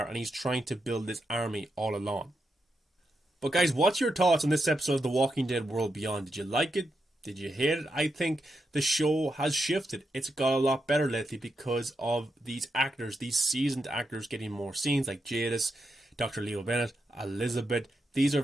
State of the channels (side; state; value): both; normal; correlation 0.85